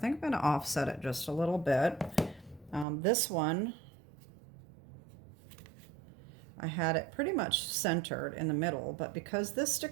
I'm going to offset it just a little bit. This one, I had it pretty much centered in the middle, but because this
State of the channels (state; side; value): drops out; left; at 2.9 s